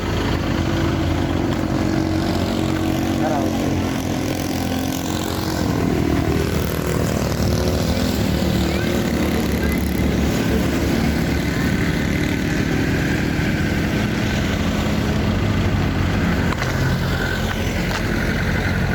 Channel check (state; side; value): identical; both; correlation 1.00